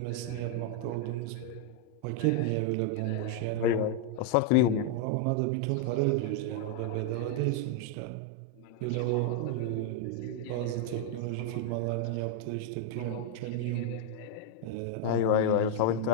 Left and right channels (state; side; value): different; both; correlation 0.00